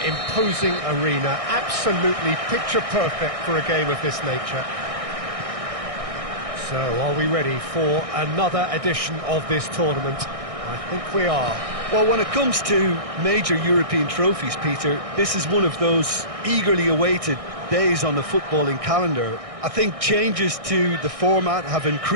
imposing arena, absolutely picture perfect for a game of this nature. So, are we ready for another edition of this tournament? I think we are. Well, when it comes to major European trophies, Peter, this is one of those eagerly awaited days on the footballing calendar. I think changes to the format have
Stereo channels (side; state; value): left; late; 1.6 ms